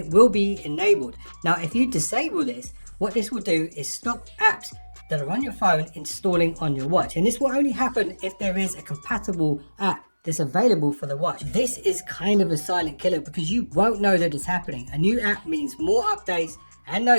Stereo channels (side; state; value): both; inverted; correlation -1.00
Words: will be enabled. Now if you disable this, what this will do is stop apps that are on your phone installing on your watch, and this will only happen if there is a compatible app that's available for the watch. This is kind of a silent killer because you won't know that it's happening. A new app means more updates and